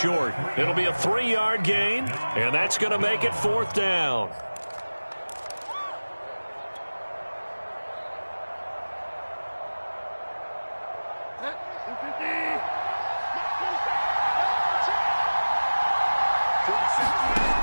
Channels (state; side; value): inverted; both; correlation -1.00